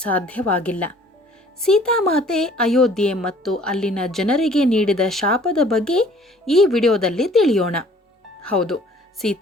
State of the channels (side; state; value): both; normal; correlation 0.54